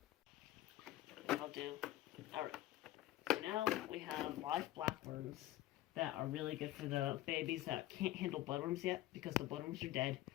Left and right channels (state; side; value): quieter; right; 15.3 dB